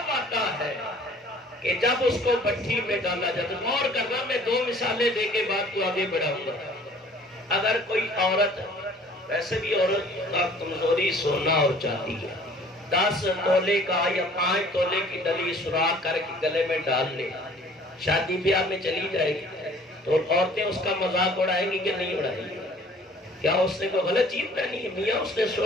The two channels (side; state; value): both; normal; correlation 0.53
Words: آتا ہے کہ جب اس کو بھٹی میں ڈالا جاتا۔ غور کرنا، میں 2 مثالیں دے کے بات کو آگے بڑھاؤں گا۔ اگر کوئی عورت، ویسے بھی عورت کا کمزوری سونا اور چاندی ہے، 10 تولے کا یا 5 تولے کی ڈلی سوراخ کر کے گلے میں ڈال لے، شادی بیاہ میں چلی جائے گی تو عورتیں اس کا مذاق اڑائیں گی کہ نہیں اڑائیں گی؟ کیا اس نے کوئی غلط چیز پہنی ہے؟ میاں اس نے